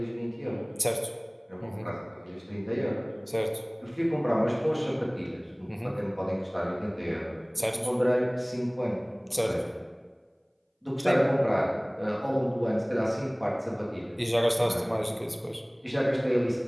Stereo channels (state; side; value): identical; both; correlation 1.00